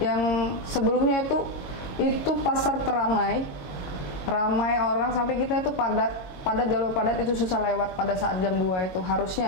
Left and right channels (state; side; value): late; right; 22 ms